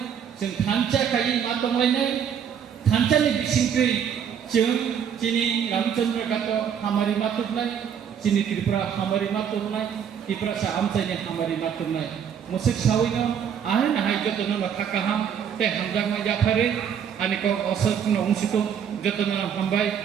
जों थानचा खायि मा दंलायनाय थानचानि बिसिंखै जों चिनि रामचंद्र घाट हामारि मातुरनाय चिनि त्रिपुरा हामारि मातुरनाय त्रिपुरा सा आमचायनि हामारि मातुरनाय मुसुक सावैनो आहाय नाहाय जतन थाकाहाम ते हामजाक मा जाफारे आनिको असरनो उंसितो जतन हामबाय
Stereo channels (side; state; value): left; quieter; 8.1 dB